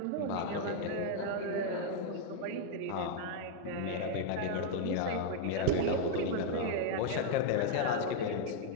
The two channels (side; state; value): both; different; correlation 0.00